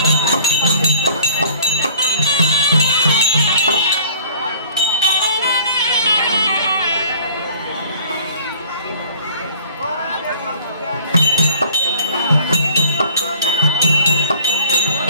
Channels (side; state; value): both; inverted; correlation -0.52